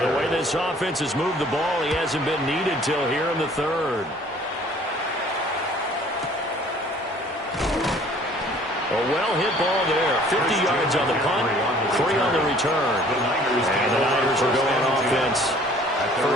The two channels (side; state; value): both; normal; correlation 0.54